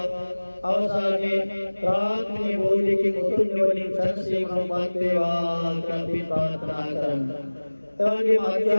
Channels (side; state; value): both; inverted; correlation -1.00